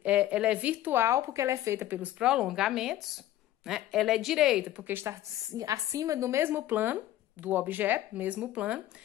é virtual, porque ela é feita pelos prolongamentos, né? Ela é direita, porque está acima do mesmo plano do objeto, mesmo plano.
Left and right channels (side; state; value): right; quieter; 13.8 dB